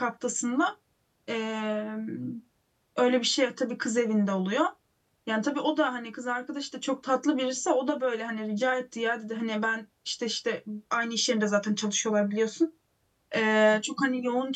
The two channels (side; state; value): both; identical; correlation 1.00